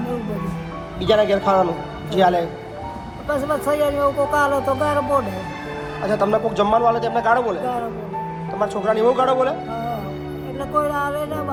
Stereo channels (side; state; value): both; identical; correlation 1.00